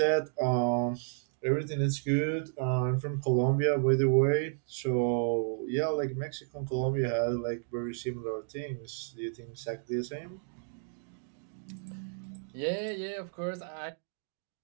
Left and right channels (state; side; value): silent; left; digital silence